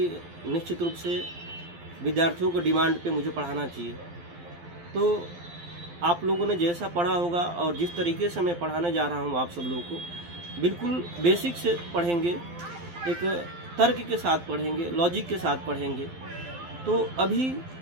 निश्चित रूप से विद्यार्थियों को डिमांड पे मुझे पढ़ाना चाहिए। तो आप लोगों ने जैसा पढ़ा होगा और जिस तरीके से मैं पढ़ाने जा रहा हूँ आप सब लोगों को, बिल्कुल बेसिक से पढ़ेंगे, एक तर्क के साथ पढ़ेंगे, लॉजिक के साथ पढ़ेंगे। तो अभी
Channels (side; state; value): left; late; 12 ms